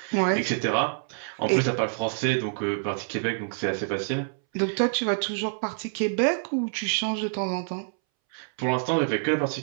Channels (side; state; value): left; silent; 60 dB below the other